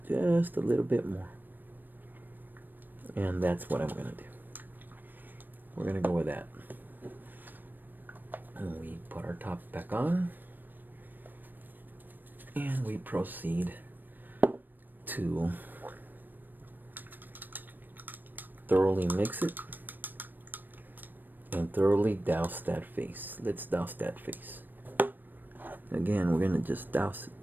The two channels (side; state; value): left; late; 0.091 ms